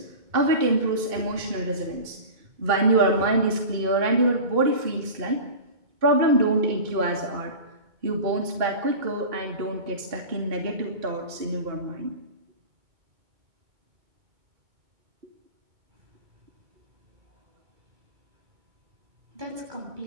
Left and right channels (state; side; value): late; left; 2.2 ms